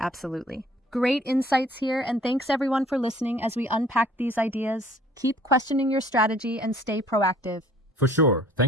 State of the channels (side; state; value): both; normal; correlation 0.55